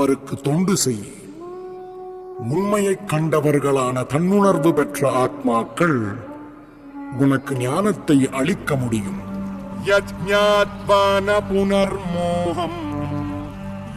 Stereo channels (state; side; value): identical; both; correlation 1.00